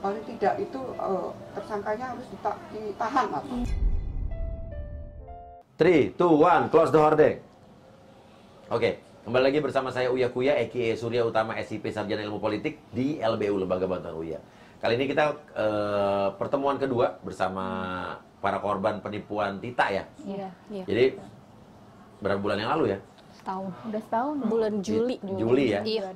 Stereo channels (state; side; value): identical; both; correlation 1.00